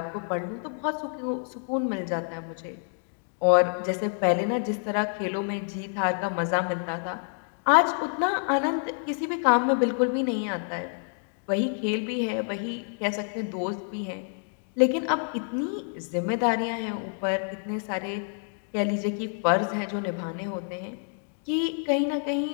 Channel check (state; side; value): silent; right; 57 dB below the other